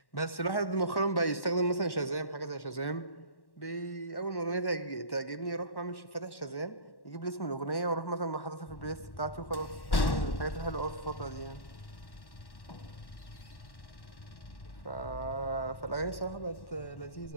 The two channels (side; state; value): right; late; 1.1 ms